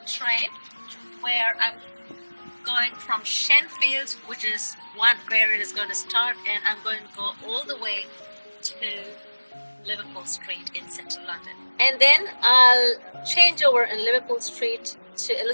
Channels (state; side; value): inverted; both; correlation -1.00